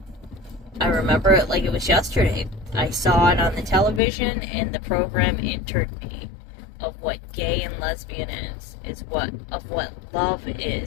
I remember it like it was yesterday. I saw it on the television, and the program entered me of what gay and lesbian is what love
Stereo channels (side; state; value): right; drops out; at 4.0 s